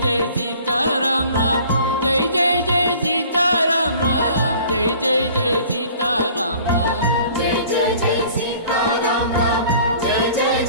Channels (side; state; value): both; inverted; correlation -0.50